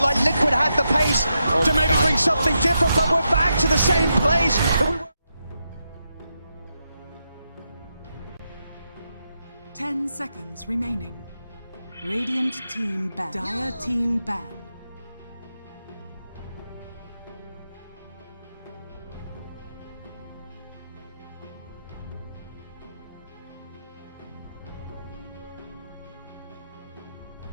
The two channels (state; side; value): inverted; both; correlation -0.85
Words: like Liquid had the pace to maybe bring something different, but we're back to the same place that we were. 10 seconds remaining. Radiant team ban. Dire team ban.